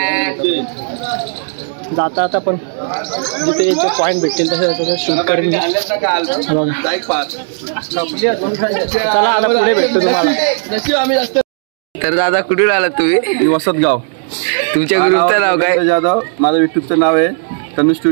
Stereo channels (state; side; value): silent; left; 65 dB below the other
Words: जाता आता पण जिथे जे पॉईंट भेटतील तसं शूट करून चला आता पुढे भेटतो तुम्हाला. तर दादा कुठून आलात तुम्ही? वसतगाव. तुमच्या ग्रुपचं नाव काय? जाधव. माझं युट्यूबचं नाव आहे तनु